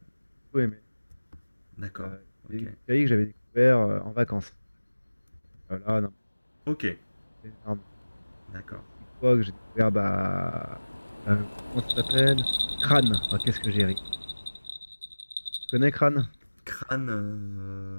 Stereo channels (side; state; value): both; inverted; correlation -1.00